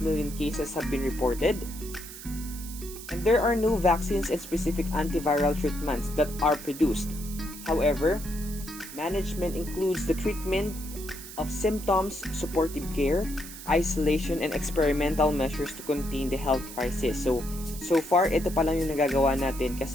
cases have been reported. And there are no vaccines and specific antiviral treatments that are produced. However, management includes the treatment of symptoms, supportive care, isolation, and experimental measures to contain the health crisis. So far, ito pa lang yung nagagawa natin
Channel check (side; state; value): right; noise; hiss, 13 dB below the sound